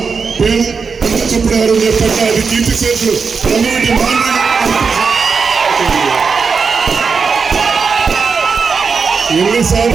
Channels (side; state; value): left; quieter; 5.3 dB